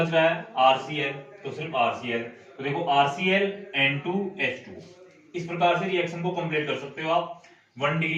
रहा है, RCl, तो सिर्फ RCl, तो देखो RCl N2 H2। इस प्रकार से रिएक्शन को कंप्लीट कर सकते हो आप 1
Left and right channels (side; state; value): both; identical; correlation 1.00